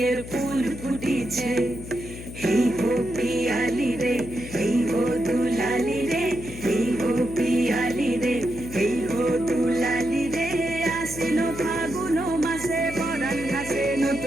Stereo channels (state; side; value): noise; left; hum, 12 dB below the sound